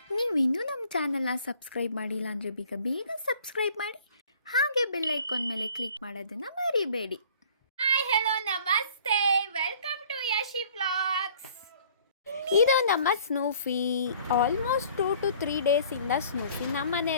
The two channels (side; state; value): both; inverted; correlation -0.53